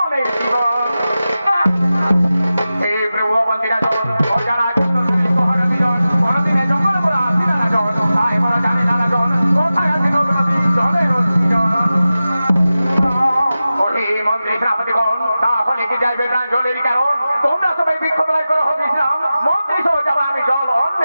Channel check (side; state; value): both; inverted; correlation -0.94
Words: জীবন? এই প্রভু বন্দিরা জন অজানা মন্ত্রী সেনাপতিগণ, তাহলে কি যাইবে প্রাণ জলের কারণ? তোমরা সবাই বৃক্ষতলায় করো হোক বিশ্রাম, মন্ত্রী সহ যাবো আমি জল